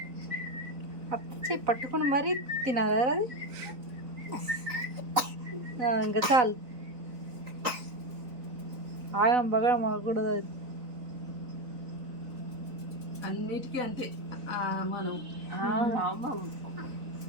అత్త పట్టుకుని మరీ తినాలి అది. ఇంకా చాలు, ఆగం బగడం మాకూడదు అది. అన్నిటికీ అంతే మనం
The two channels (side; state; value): left; late; 4.0 ms